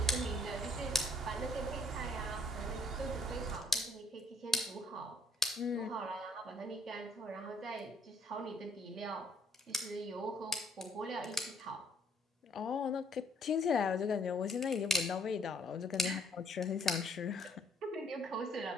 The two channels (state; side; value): normal; both; correlation 0.64